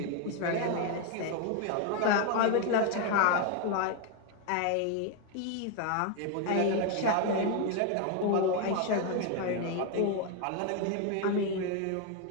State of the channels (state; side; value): different; both; correlation 0.01